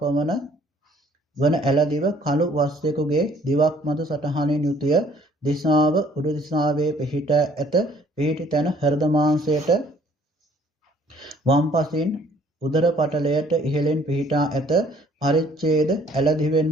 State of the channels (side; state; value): both; normal; correlation 0.59